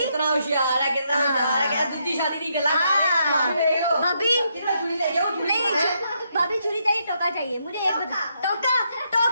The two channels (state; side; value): inverted; both; correlation -0.77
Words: होशियार है, कितना होशियार है। क्या दूसरी शादी नहीं गला भाभी नहीं, भाभी छुरी चाहिए, टोका चाहिए। मुझे एक बता, टोका